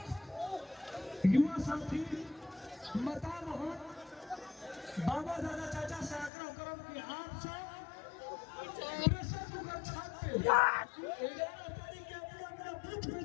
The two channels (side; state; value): right; drops out; at 6.3 s